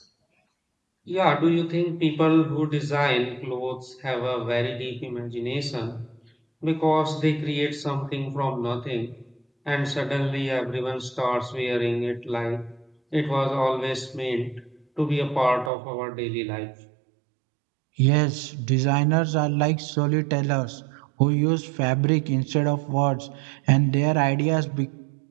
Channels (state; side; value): drops out; left; at 15.7 s